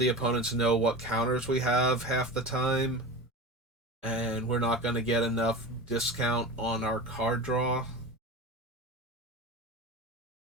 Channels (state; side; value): normal; both; correlation 0.29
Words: opponents know what counters we have half the time. And we're not going to get enough discount on our card draw.